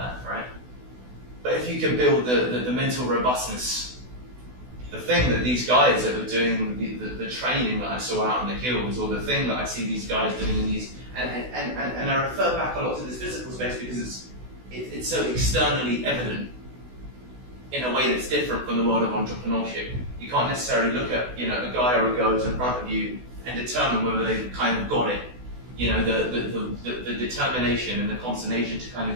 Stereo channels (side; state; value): left; late; 16 ms